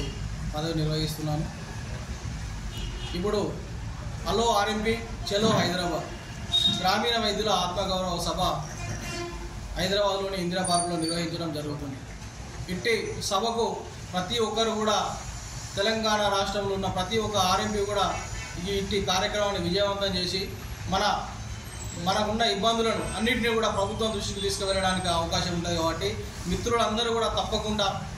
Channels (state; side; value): identical; both; correlation 1.00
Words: పదవి నిర్వహిస్తున్నాను. ఇప్పుడు హలో ఆర్ఎంపీ చలో హైదరాబాద్ గ్రామీణ వైద్యుల ఆత్మగౌరవ సభ హైదరాబాద్లోని ఇందిరా పార్కులో నిర్వహించడం జరుగుతుంది. ఇట్టి సభకు ప్రతి ఒక్కరు కూడా తెలంగాణ రాష్ట్రంలో ఉన్న ప్రతి ఒక్క ఆర్ఎంపీ కూడా ఇట్టి కార్యక్రమాన్ని విజయవంతం చేసి మనకున్న ఇబ్బందులను అన్నింటినీ కూడా ప్రభుత్వం దృష్టికి తీసుకువెళ్ళడానికి అవకాశం ఉంటుంది. కాబట్టి మిత్రులందరూ కూడా తప్పకుండా